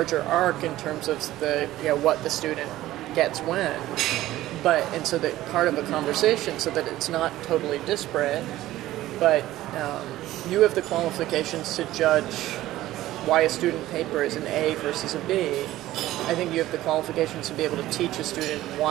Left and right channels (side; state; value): left; quieter; 15.3 dB